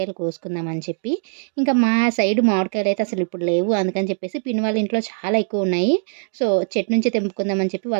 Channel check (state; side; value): silent; left; digital silence